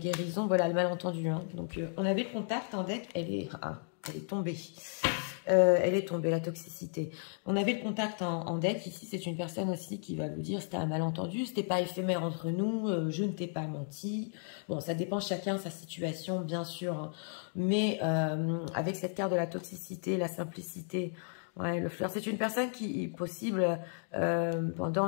voilà, le malentendu. Hein. Donc, on avait le contact en deck, elle est tombée. Elle est tombée, la toxicité. On avait le contact en deck. Ici, c'est une personne aussi qui va vous dire c'était un malentendu, c'était pas éphémère entre nous, je ne t'ai pas menti. Bon, ça dépend chacun sa situation, bien sûr. Hein. Mais avec cette carte de la toxicité, la simplicité, ouais, le fleur, c'est une personne qui est possible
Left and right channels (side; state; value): right; silent; 55 dB below the other